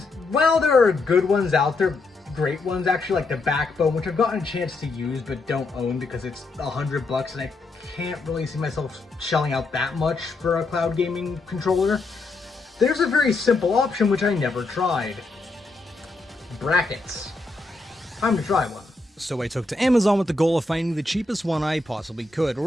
while there are good ones out there, great ones actually, like the Backbone, which I've gotten a chance to use but don't own because it's $100 and I can't really see myself shelling out that much for a cloud gaming controller. There's a very simple option which I never tried. Brackets. Time to try one. So I took to Amazon with the goal of finding the cheapest one I possibly could, or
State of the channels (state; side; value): quieter; right; 3.3 dB